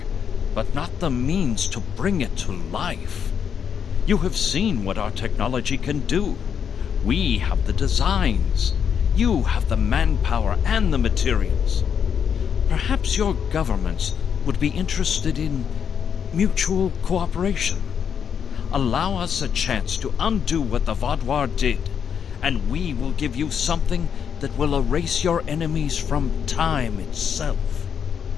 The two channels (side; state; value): right; quieter; 7.6 dB